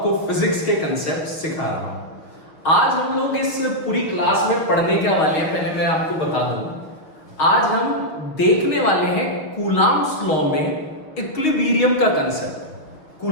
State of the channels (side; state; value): right; late; 6.4 ms